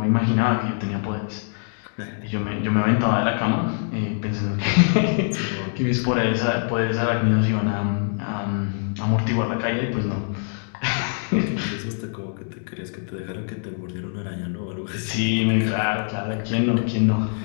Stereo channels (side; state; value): right; silent; digital silence